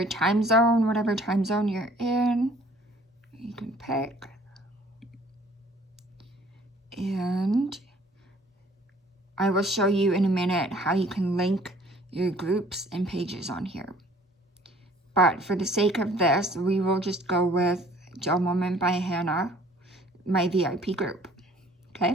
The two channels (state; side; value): normal; both; correlation 0.55